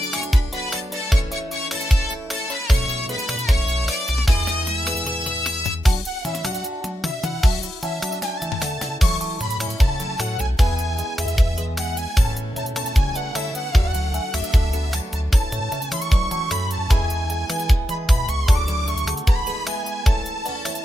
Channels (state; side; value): normal; both; correlation 0.87